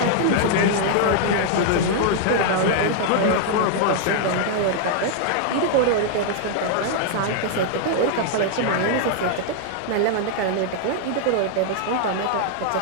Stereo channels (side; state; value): both; different; correlation 0.00